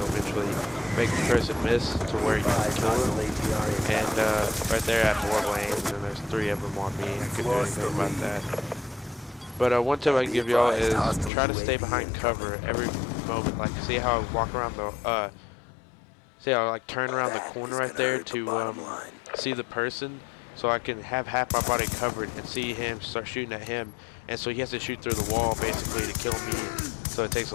eventually make the person miss to where you can kill them. And right there I had horrible aim, and there's 3 of them on me. I couldn't do anything about that. But one tip I can give y'all is try to stay behind cover every moment. Like, see how I walk around the see how I like turn around the corner right there to see the person, so I can have half my body covered and see him start shooting at him. And so he has to shoot through the wall basically to kill me. So it takes a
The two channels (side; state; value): right; drops out; at 11.3 s